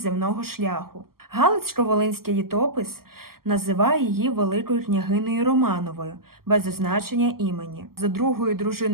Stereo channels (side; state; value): left; late; 0.93 ms